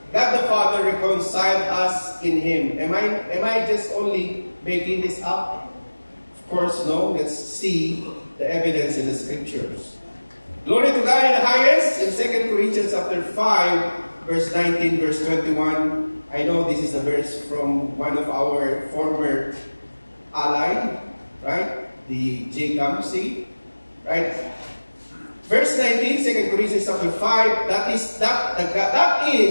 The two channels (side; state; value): both; inverted; correlation -1.00